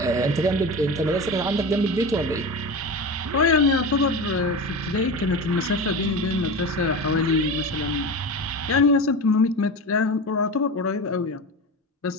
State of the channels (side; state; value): both; normal; correlation 0.26